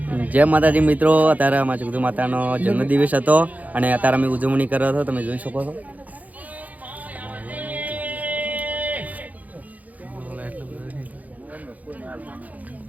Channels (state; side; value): late; left; 0.077 ms